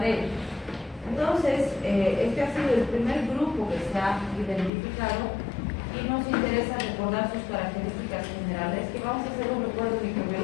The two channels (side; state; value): right; drops out; at 4.7 s